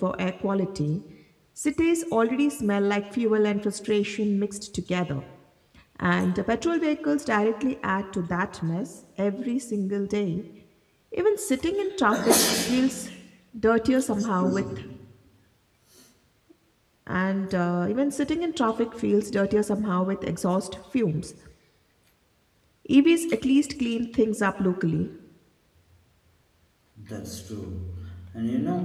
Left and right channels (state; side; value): identical; both; correlation 1.00